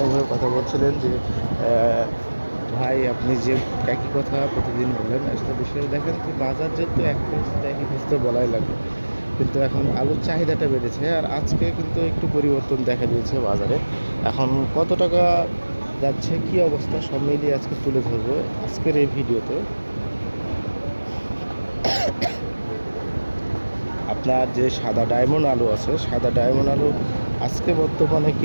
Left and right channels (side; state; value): both; inverted; correlation -1.00